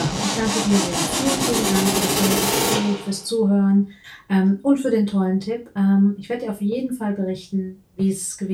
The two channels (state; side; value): identical; both; correlation 1.00